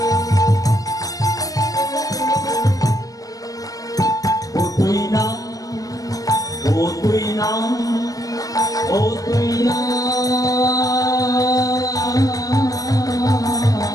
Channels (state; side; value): late; right; 0.17 ms